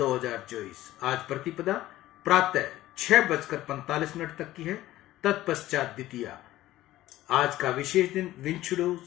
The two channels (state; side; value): quieter; right; 15.4 dB